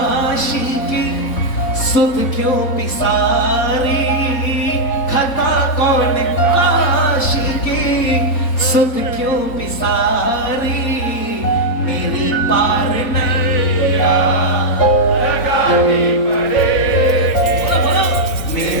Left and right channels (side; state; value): right; late; 4.1 ms